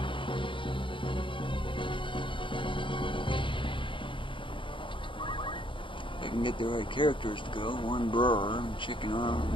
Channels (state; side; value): late; right; 0.24 ms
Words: I can get the right characters to go. 1 burr and chicken